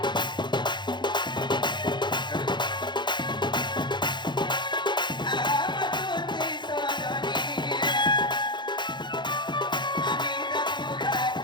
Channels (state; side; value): late; right; 0.22 ms